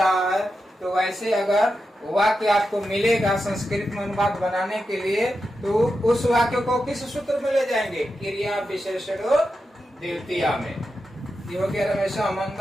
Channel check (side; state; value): both; normal; correlation 0.89